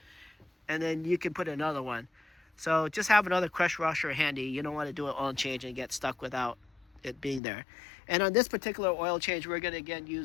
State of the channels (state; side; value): drops out; right; at 7.4 s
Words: and then you can put another one. So just have another crush washer handy. You don't want to do an oil change and get stuck without it being there. And on this particular oil change, we're going to again